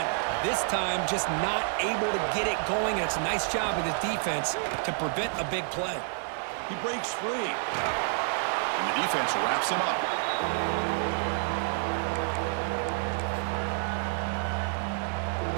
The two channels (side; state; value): left; silent; 59 dB below the other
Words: This time, just not able to get it going. And it's a nice job of the defense to prevent a big play. He breaks free. And the defense wraps him up.